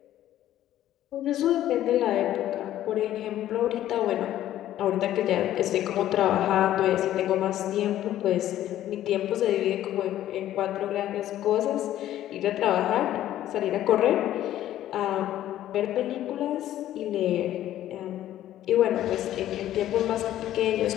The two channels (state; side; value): quieter; right; 12.8 dB